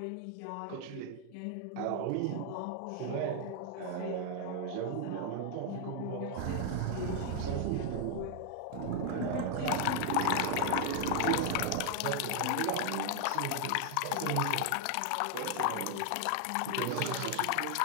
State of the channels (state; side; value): different; both; correlation 0.00